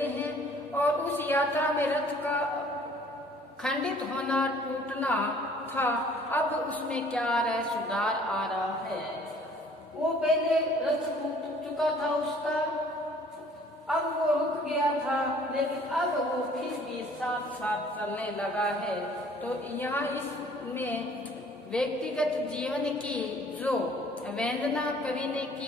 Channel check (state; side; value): normal; both; correlation 0.55